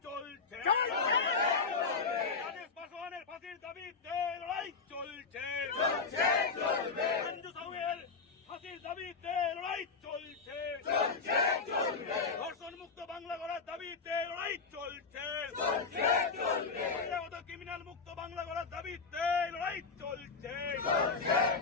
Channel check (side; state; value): right; quieter; 4.7 dB